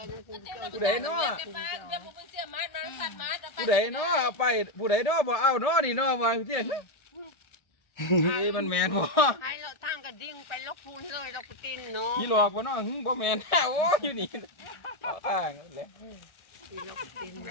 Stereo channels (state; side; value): late; right; 1.7 ms